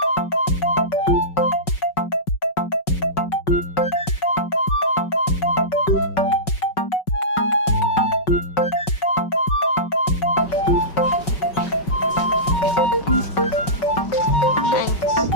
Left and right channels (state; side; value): late; right; 5.4 ms